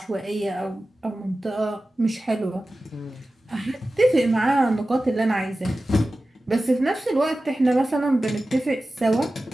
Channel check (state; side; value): normal; both; correlation 0.95